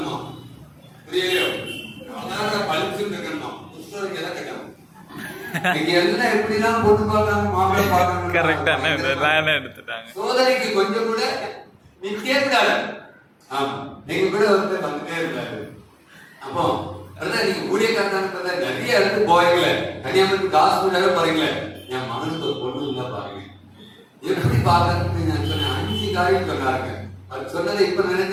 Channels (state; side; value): identical; both; correlation 1.00